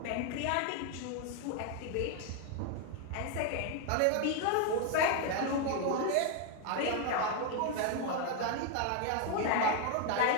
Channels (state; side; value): different; both; correlation 0.01